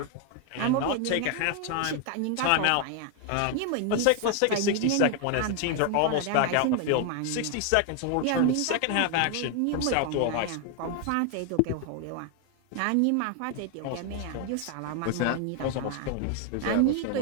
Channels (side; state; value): both; different; correlation 0.00